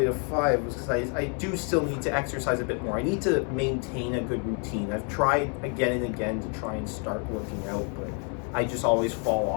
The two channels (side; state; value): right; quieter; 39.4 dB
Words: to 5 was because I do still need to exercise a bit more. I need to maintain a good routine. I've tried again and again to try and start working out, but I just always fall